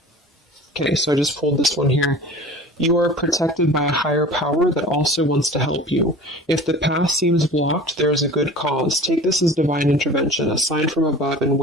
okay, so I just pulled this one here. You are protected by a higher power that also wants to help you. If the path seems blocked, there is a good cause. Take this as divine intervention, a sign from above, and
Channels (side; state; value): both; normal; correlation 0.40